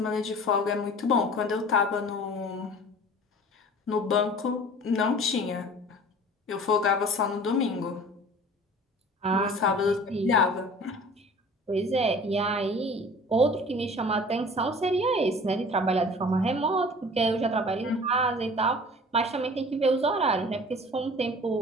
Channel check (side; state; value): both; normal; correlation 0.44